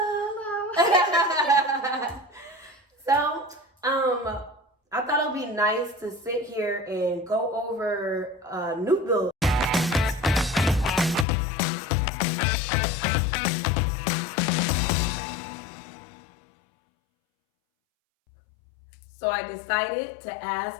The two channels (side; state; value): right; drops out; at 11.2 s